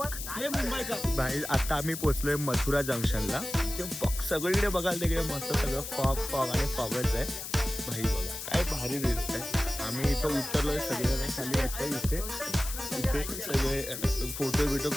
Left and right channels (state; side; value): noise; left; hiss, 7 dB below the sound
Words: भाई आता आम्ही पोचलोय मथुरा जंक्शनला. सगळीकडे बघाल तिकडे मस्त सगळं फॉग आणि फॉगच आहे भाई. बघा काय भारी दिसत आहे. आम्ही इथं उतरलोय सगळे खाली वाटतंय. इथे सगळे फोटो